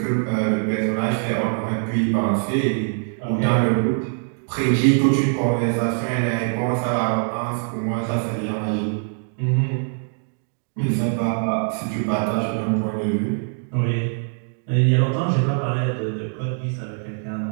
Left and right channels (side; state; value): left; silent; 55 dB below the other